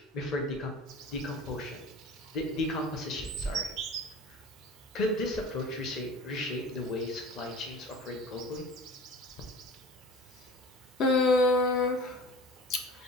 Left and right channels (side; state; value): both; normal; correlation 0.40